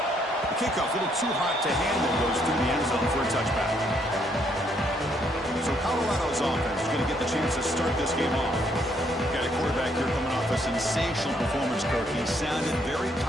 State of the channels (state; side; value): normal; both; correlation 0.70